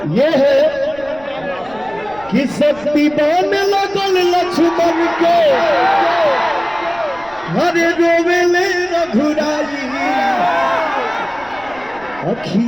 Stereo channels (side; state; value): right; noise; rumble, 23 dB below the sound